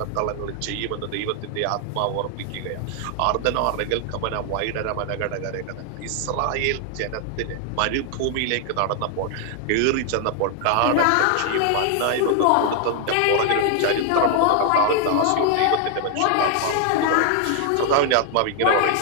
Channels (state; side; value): different; both; correlation 0.00